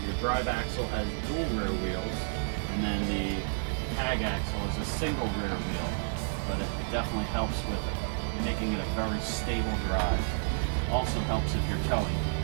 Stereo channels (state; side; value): silent; left; digital silence